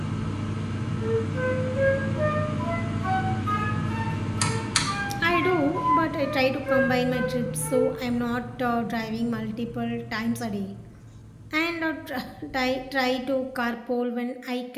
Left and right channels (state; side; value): identical; both; correlation 1.00